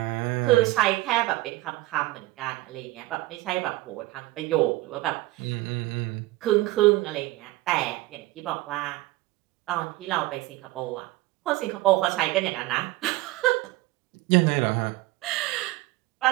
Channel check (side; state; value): left; quieter; 18.9 dB